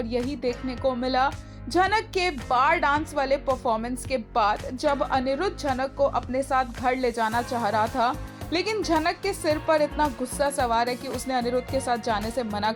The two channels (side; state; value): both; identical; correlation 1.00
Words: यही देखने को मिला झनक के बार डांस वाले परफॉर्मेंस के बाद, जब अनिरुद्ध झनक को अपने साथ घर ले जाना चाह रहा था, लेकिन झनक के सिर पर इतना गुस्सा सवार है कि उसने अनिरुद्ध के साथ जाने से मना